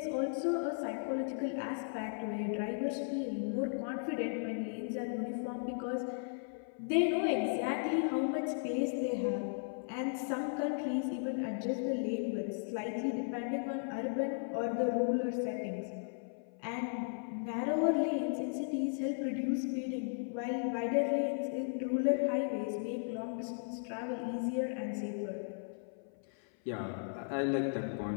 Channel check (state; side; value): silent; right; 54 dB below the other